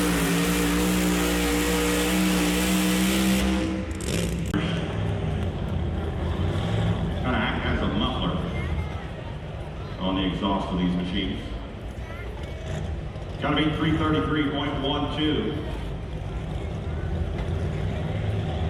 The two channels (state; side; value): identical; both; correlation 1.00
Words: Kind of act as a muffler on the exhaust of these machines. Gotta be 333.12.